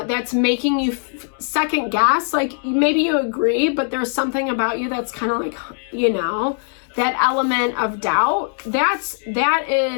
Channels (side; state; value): right; silent; 57 dB below the other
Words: making you second guess, like maybe you agree, but there's something about you that's kind of like, you know, that element of doubt, that